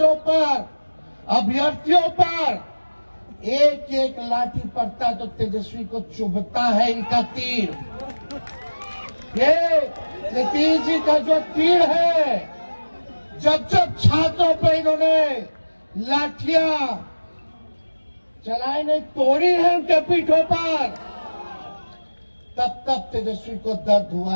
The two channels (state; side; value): inverted; both; correlation -1.00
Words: पर, अभ्यर्थियों पर एक एक लाठी पड़ता है तो तेजस्वी को चुभता है इनका तीर। ये नीतीश जी का जो तीर है, जब जब छात्रों पर इन्होंने लाठियां चलाई नहीं, तोड़ी है उनके पीठों पर, तब तब तेजस्वी को दर्द हुआ